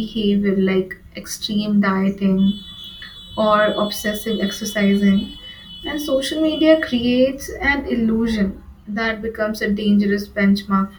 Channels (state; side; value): identical; both; correlation 1.00